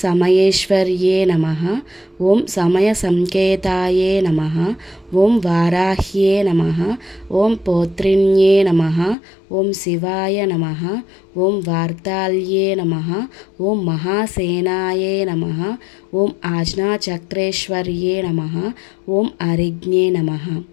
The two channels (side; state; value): right; drops out; at 9.2 s